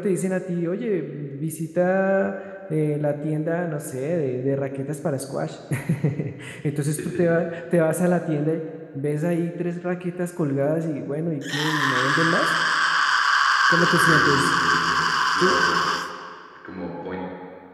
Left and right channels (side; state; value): both; identical; correlation 1.00